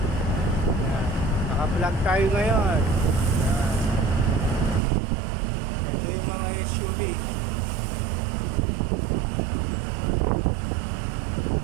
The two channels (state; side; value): drops out; left; at 4.8 s